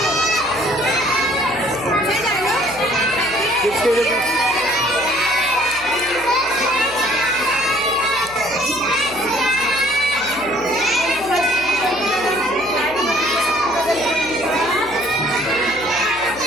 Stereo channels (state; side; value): noise; right; hum, 19 dB below the sound